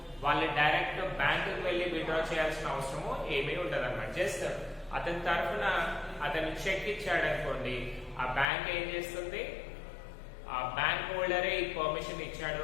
వాళ్ళు డైరెక్ట్ బ్యాంకుకి వెళ్ళి విత్డ్రా చేయాల్సిన అవసరము ఏమీ ఉండదు అన్నమాట. జస్ట్ అతని తరఫున అతను చెక్ ఇచ్చాడు అనుకోండి, ఆ బ్యాంక్ ఏం చేస్తుంది, ఆ బ్యాంక్ హోల్డరే ఈ పర్మిషన్ ఇచ్చాడు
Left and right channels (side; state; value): right; drops out; at 8.5 s